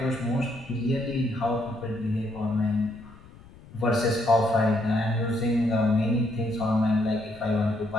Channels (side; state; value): left; noise; rumble, 21 dB below the sound